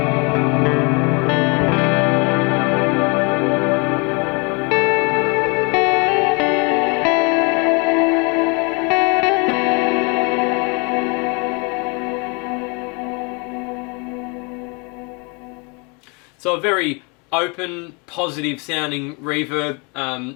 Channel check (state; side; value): quieter; right; 31.7 dB